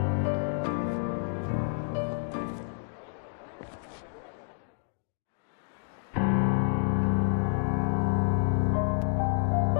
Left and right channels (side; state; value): right; silent; digital silence